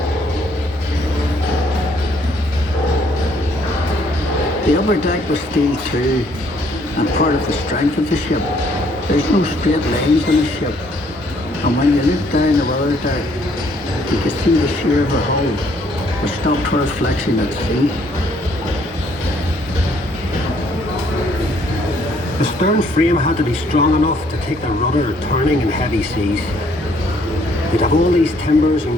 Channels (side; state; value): both; normal; correlation 0.65